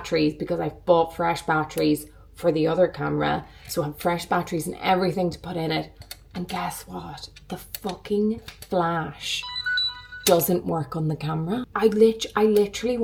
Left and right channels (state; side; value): identical; both; correlation 1.00